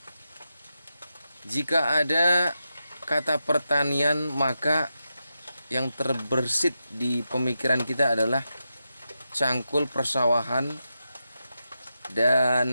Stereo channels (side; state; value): both; inverted; correlation -0.88